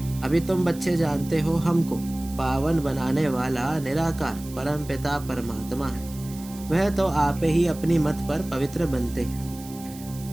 अभी तुम बच्चे जानते हो हमको पावन बनाने वाला निराकार परम पिता परमात्मा है। वह तो आप ही अपनी मत पर पवित्र बनते हैं।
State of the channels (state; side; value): noise; right; hiss, 18 dB below the sound